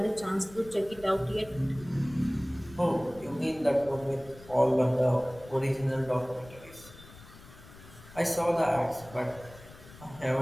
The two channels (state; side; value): noise; left; rumble, 20 dB below the sound